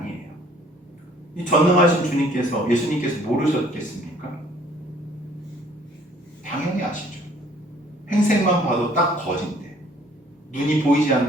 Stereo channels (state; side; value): normal; both; correlation 0.57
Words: 이 전능하신 주님께서, 예수님께서 모르셨겠습니까? 당연히 아시죠. 행색만 봐도 딱 거진데, 눈이 보이지